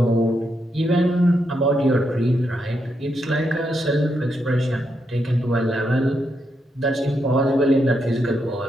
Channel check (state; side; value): normal; both; correlation 0.81